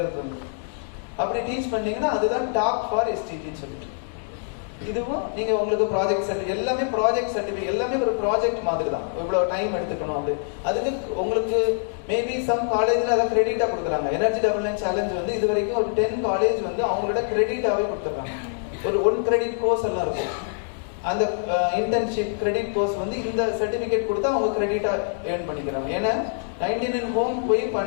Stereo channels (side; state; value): right; silent; digital silence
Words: ஒருத்தவங்க. அப்படி டீச் பண்ணீங்கன்னா அதுதான் டாப் ஃபார் SDGன்னு சொல்லிட்டு. இதுவும் நீங்க உங்களுக்கு ப்ராஜெக்ட் சர்டிஃபிகேட், எல்லாமே ப்ராஜெக்ட் சர்டிஃபிகேட், எல்லாமே ஒரு ப்ராஜெக்ட் மாதிரி தான். இவ்வளவு டைம் எடுத்துக்கணும் அப்படி. அதுக்கு உங்களுக்கு மேபி சம் காலேஜ்ல அதை கிரெடிட்டா கொடுக்குறாங்க. எனர்ஜி டெவலப்மெண்ட் சேலஞ்ச் வந்து இது வரைக்கும் ஒரு 10 காலேஜ் வந்து அவங்களோட கிரெடிட்டாவே கொடுத்துருக்காங்க. ஒரு 1 கிரெடிட் கோர்ஸ் எல்லாம் இருக்கும். அந்த இன்டர்ன்ஷிப் கிரெடிட் கோர்ஸ் வந்து இந்த சர்டிபிகேட் கொடுத்தா அவங்க கிரெடிட்டா ஏர்ன் பண்ணிக்கிறாங்க. ஏன்னா 99 ஹோம் போய்